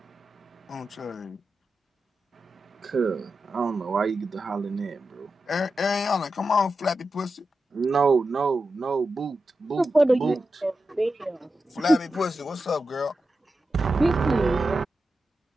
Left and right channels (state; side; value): normal; both; correlation 0.90